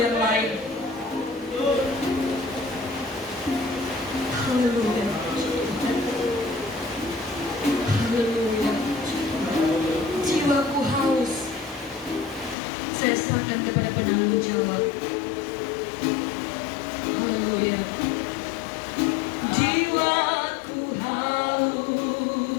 yang lain. Haleluya. Haleluya. Jiwaku haus. Saya serahkan kepada penanggung jawab. Haleluya. Jiwaku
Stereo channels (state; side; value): drops out; right; at 12.6 s